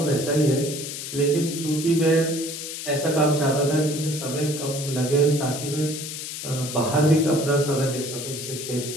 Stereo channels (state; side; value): noise; left; hiss, 7 dB below the sound